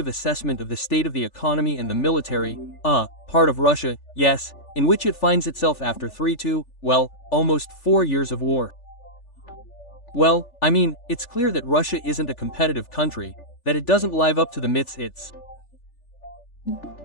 assessment of the state of the economy and the military, part of Russia, yes, in which it finds itself after almost 4 years of war. Well, I mean, it's clear that Russia isn't a competitive country, that it doesn't live up to the myths it's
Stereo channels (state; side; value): late; right; 3.4 ms